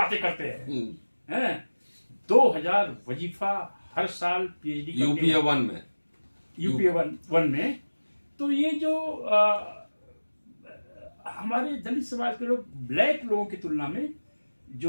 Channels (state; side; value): inverted; both; correlation -1.00